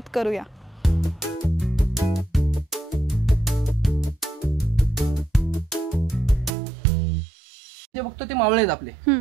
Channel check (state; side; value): drops out; left; at 6.5 s